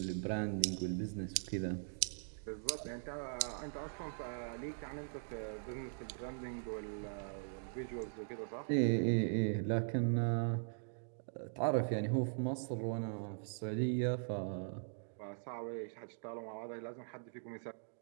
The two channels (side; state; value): left; silent; digital silence